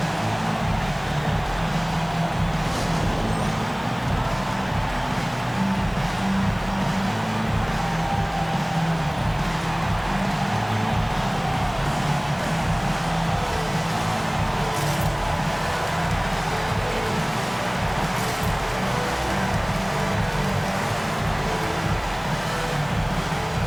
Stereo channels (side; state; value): right; noise; hiss, 26 dB below the sound